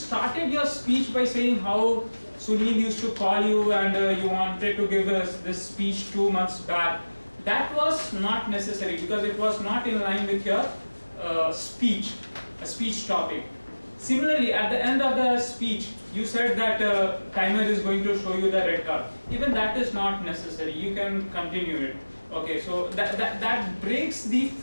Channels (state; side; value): inverted; both; correlation -1.00